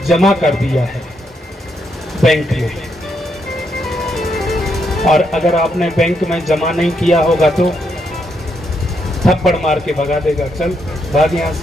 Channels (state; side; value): normal; both; correlation 0.78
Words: जमा कर दिया है बैंक में, और अगर आपने बैंक में जमा नहीं किया होगा तो थप्पड़ मार के भगा देगा, चल भाग यहां